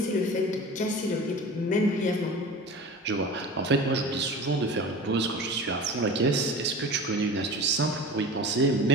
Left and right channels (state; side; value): normal; both; correlation 0.36